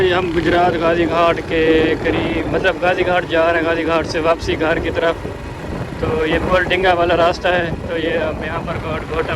हम गुजरात गाजी घाट के करीब, मतलब गाजी घाट जा रहे हैं, गाजी घाट से वापसी घर की तरफ। तो ये पुल डिंगा वाला रास्ता है। तो ये अब यहाँ पर घोटा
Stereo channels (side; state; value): both; identical; correlation 1.00